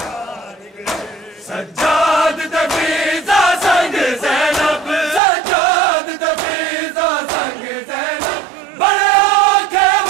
गए सज्जाद दफीज़ा संग ज़ैनब सज्जाद दफीज़ा संग ज़ैनब बड़े औखे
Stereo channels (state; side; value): drops out; left; at 5.2 s